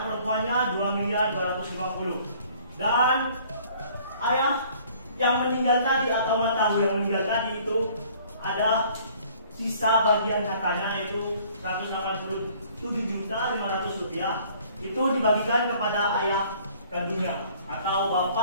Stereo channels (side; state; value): both; inverted; correlation -0.56